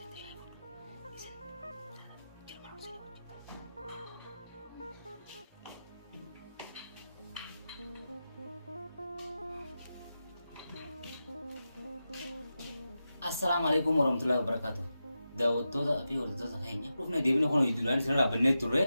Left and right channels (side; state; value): both; inverted; correlation -0.91